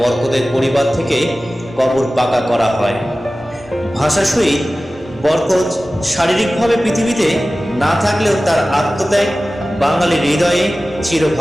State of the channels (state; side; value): normal; both; correlation 0.96